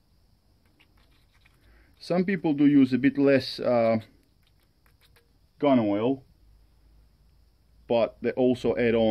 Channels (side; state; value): both; identical; correlation 1.00